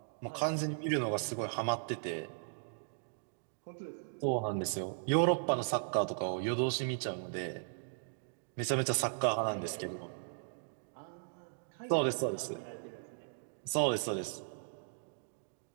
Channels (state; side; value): silent; left; digital silence